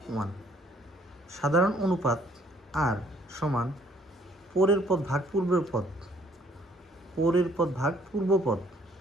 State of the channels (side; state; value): both; normal; correlation 0.62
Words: 1। সাধারণ অনুপাত আর সমান পরের পদ ভাগ পূর্বের পদ, পরের পদ ভাগ পূর্ব পদ।